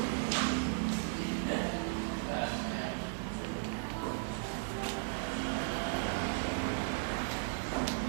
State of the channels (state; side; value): silent; left; digital silence